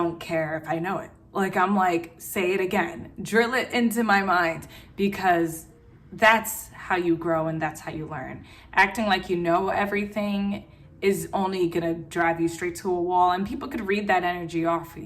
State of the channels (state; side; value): identical; both; correlation 1.00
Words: care if I know it. Like, I'm like, say it again, drill it into my mind, because that's how you grow and that's how you learn. Acting like you know everything is only gonna drive you straight to a wall, and people could read that energy off of